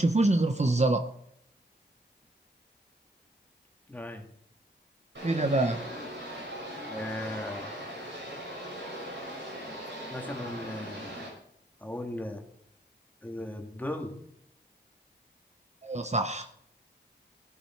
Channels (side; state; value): both; normal; correlation 0.66